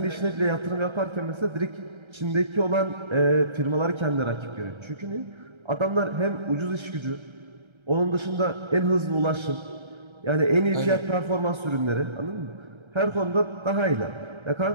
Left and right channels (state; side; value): late; left; 1.3 ms